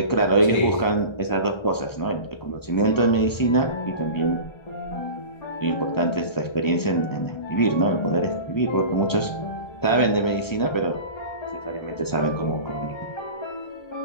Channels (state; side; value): late; right; 1.3 ms